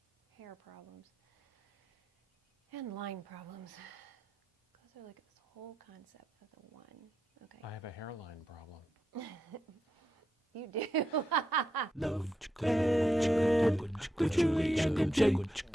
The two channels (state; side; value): normal; both; correlation 0.85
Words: hair problems and line problems. Those are like this whole concept of the one. Okay. I have a hairline problem. You do.